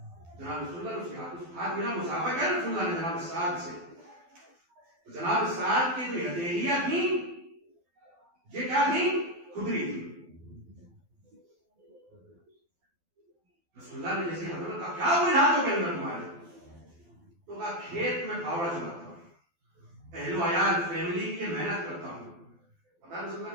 جناب رسول اللہ اس کے ہاتھ ملا، مسافہ کیا رسول اللہ نے جناب سعد سے، تو جناب سعد کی جو ہتھیلیاں تھیں، یہ کیا تھیں؟ کھدری تھی۔ رسول اللہ نے جیسے حضرت کا کیا ہوئے ہاتھوں کے اندر تمہارے، تو کہا کھیت میں پھاوڑا چلاتا ہوں، اہل و عیال فیملی کی محنت کرتا ہوں۔ پتا رسول اللہ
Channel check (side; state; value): left; late; 12 ms